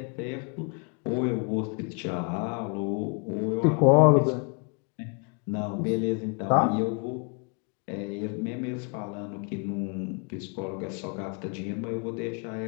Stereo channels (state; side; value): quieter; right; 37.1 dB